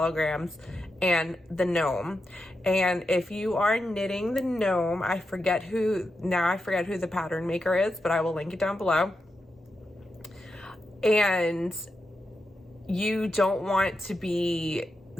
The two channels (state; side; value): normal; both; correlation 0.87